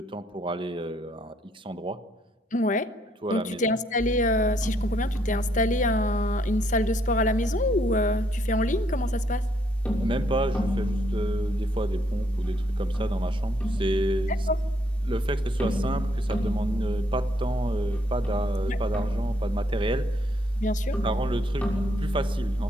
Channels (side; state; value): both; normal; correlation 0.71